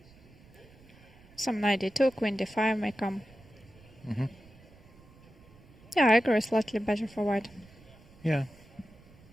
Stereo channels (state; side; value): noise; right; rumble, 24 dB below the sound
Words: Some knight d2, queen d5 may come. Mm-hmm. Yeah, I agree, slightly better for white. Yeah.